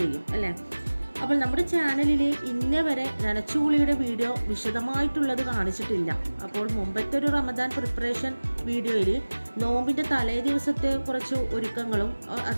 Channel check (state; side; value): inverted; both; correlation -1.00